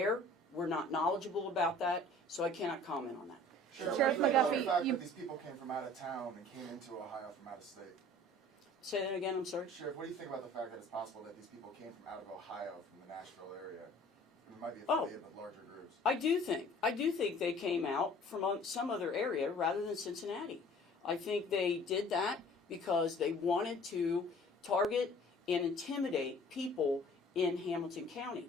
We're not knowledgeable about that, so I cannot comment on that. Sheriff What do you think about McGuffey, the fact you- that these people came from out of town and came into Ohio from out of state? Say that again, I'm sorry? Sheriff, what do you think about the fact that it's possible that these people came from out of Ohio, from the Nashville area? And it might be Oh. affiliated with larger groups. I do think they came out from some other area rather than Cincinnati. I think they did that because they wanted to target and intimidate people in Hamilton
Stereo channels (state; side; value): normal; both; correlation 0.50